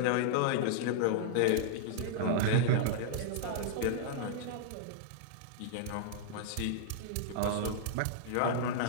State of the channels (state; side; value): different; both; correlation -0.01